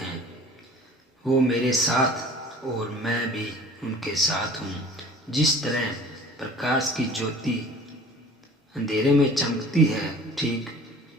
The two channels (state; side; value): normal; both; correlation 0.45